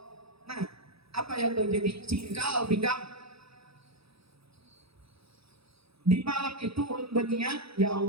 Nah, apa yang terjadi? Cingkal pinggang Di malam itu ulun berniat, ya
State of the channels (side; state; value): left; late; 0.77 ms